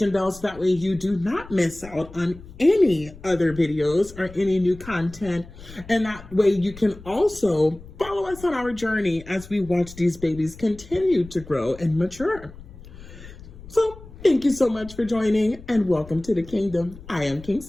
bell so that way you do not miss out on any other videos or any new content. And that way you can also follow us on our journey as we watch these babies continue to grow and mature. So thank you so much for joining and welcome to the kingdom. I am King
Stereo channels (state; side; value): noise; left; rumble, 17 dB below the sound